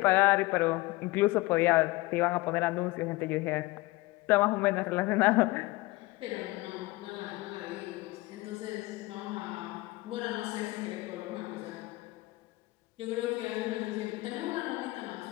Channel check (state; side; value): quieter; right; 21.0 dB